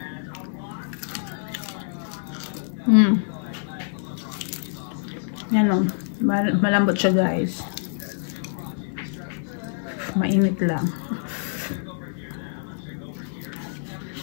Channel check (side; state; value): right; silent; digital silence